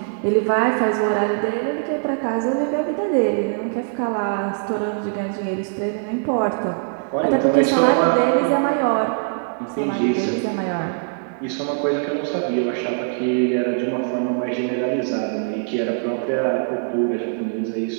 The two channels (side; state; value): left; silent; 64 dB below the other